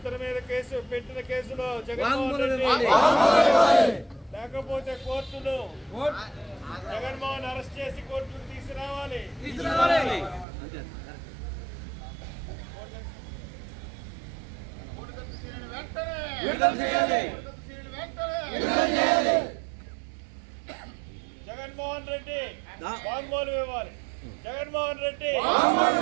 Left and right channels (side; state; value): left; drops out; at 10.5 s